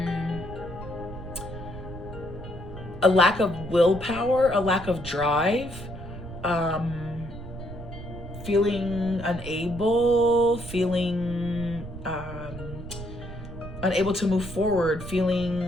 a lack of willpower, a lack of drive, feeling unable, unable to move forward,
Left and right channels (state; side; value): noise; right; rumble, 11 dB below the sound